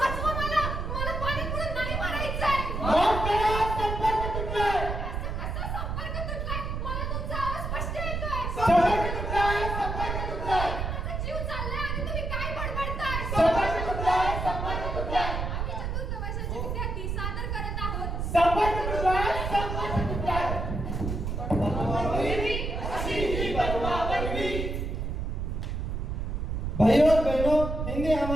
भाइयों और बहनों, हिंदी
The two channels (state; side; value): noise; right; rumble, 3 dB below the sound